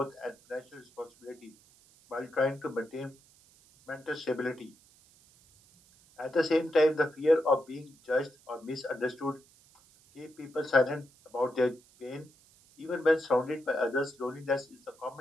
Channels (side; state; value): right; noise; hiss, 28 dB below the sound